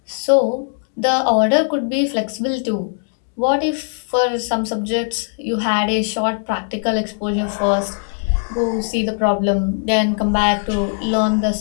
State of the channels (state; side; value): silent; right; 60 dB below the other